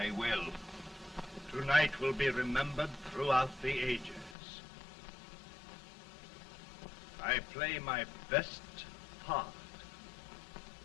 will. Tonight will be remembered throughout the ages. I play my best part.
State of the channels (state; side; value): drops out; right; at 4.4 s